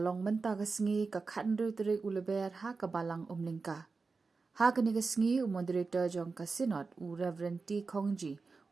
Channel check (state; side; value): quieter; left; 4.3 dB